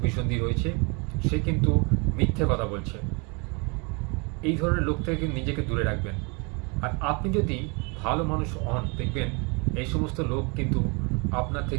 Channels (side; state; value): left; quieter; 31.6 dB